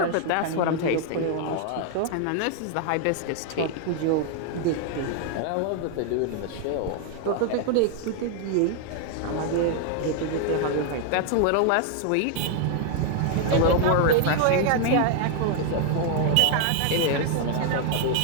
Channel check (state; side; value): different; both; correlation 0.00